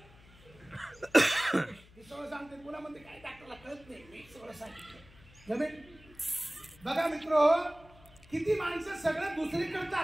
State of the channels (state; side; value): noise; left; hum, 24 dB below the sound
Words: सगळं सांगते, पुन्हा म्हणते काय डॉक्टरला कळत नाही, मी सगळं सांगितलं. जमेल. बघा मित्र, किती माणसं सगळं दुसरी